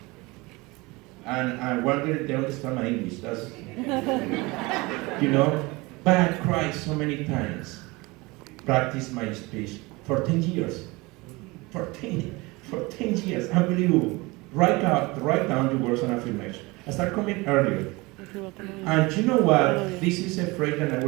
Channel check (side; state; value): left; quieter; 23.7 dB